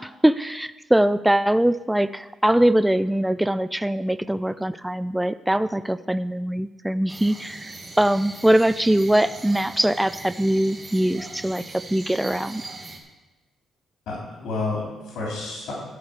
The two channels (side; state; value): both; normal; correlation 0.98